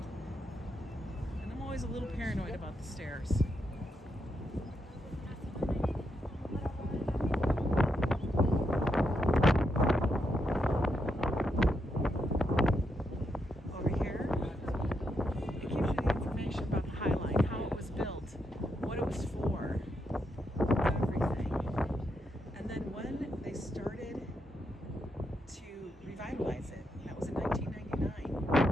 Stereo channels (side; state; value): both; normal; correlation 0.81